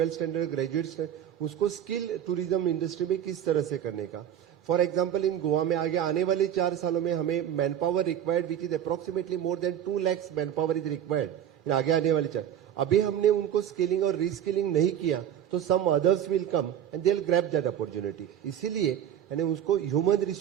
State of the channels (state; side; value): quieter; left; 10.2 dB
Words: standard, graduate, उसको स्किल टूरिज्म इंडस्ट्री में किस तरह से करने का। फॉर एग्जांपल इन गोवा में आगे आने वाले 4 सालों में हमें man power required which is approximately more then 2 lakhs man power is required आगे आने वाले 4। अभी हमने उनको स्किलिंग और रीस्किलिंग नहीं किया तो some others will come and they will grab that opportunity. इसीलिए यानी उसको ह्यूमन